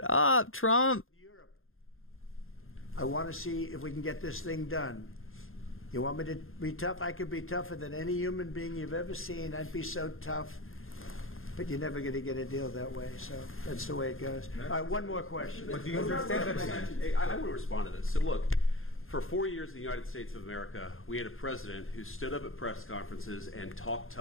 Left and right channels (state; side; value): late; right; 0.60 ms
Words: up, Trump. I want to see if we can get this thing done. You want me to be tough? I could be tougher than any human being you've ever seen. I'd be so tough. But you're never going to get a deal that way. So that's the way it goes. All right, one more question. I want to respond to this. So look, for 4 years in the United States of America, we had a president who stood up at press conferences and talked